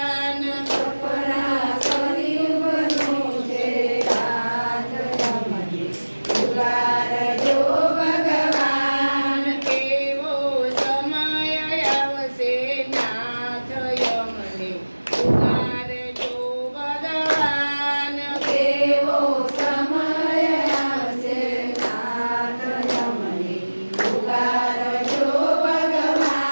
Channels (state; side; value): inverted; both; correlation -1.00